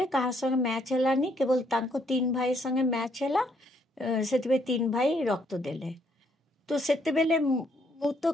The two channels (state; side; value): normal; both; correlation 0.70